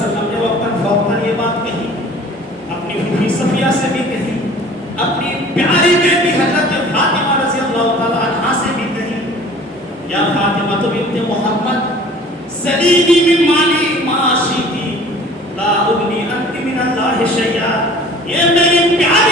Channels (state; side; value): normal; both; correlation 0.47